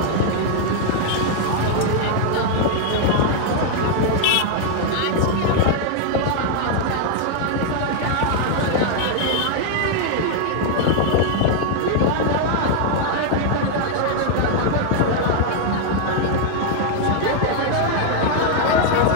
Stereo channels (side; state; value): both; different; correlation 0.00